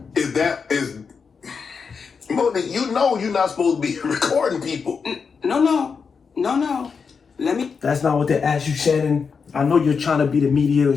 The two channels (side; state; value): right; quieter; 5.6 dB